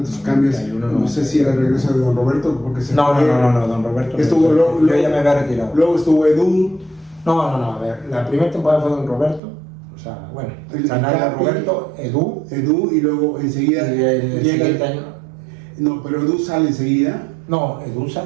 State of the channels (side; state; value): left; drops out; at 9.4 s